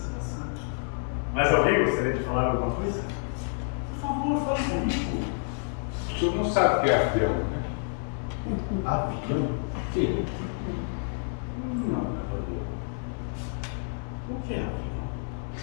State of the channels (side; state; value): right; silent; digital silence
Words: Mais alguém gostaria de falar alguma coisa? Por favor, fale comigo. O senhor não sabe o que é avião, né? Avião? Sim. Não, cavaleiro. O que é avião?